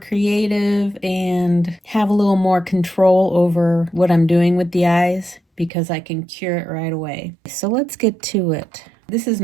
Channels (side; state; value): left; drops out; at 5.7 s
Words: and have a little more control over what I'm doing with the eyes because I can cure it right away. So let's get to it. This is